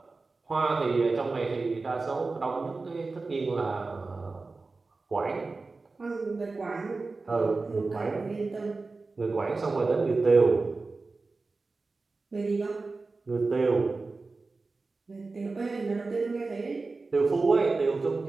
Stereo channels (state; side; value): quieter; left; 3.8 dB